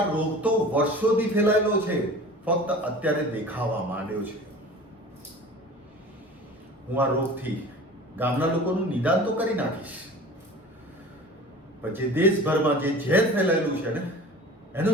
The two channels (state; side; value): normal; both; correlation 0.40